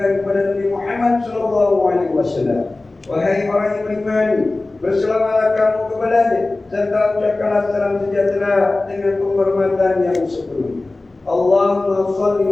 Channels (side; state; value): right; quieter; 3.1 dB